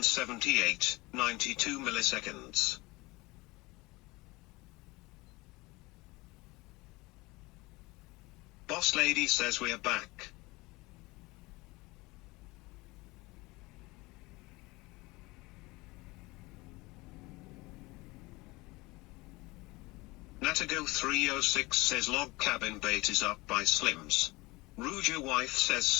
92 milliseconds. Boss Lady says we're back. Natago 306 says log cabin bait is up by Slims. Ruja wife says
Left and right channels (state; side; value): quieter; right; 22.7 dB